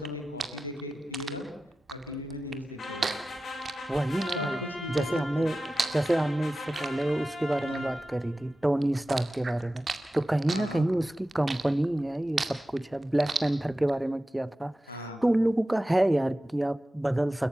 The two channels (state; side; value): normal; both; correlation 0.95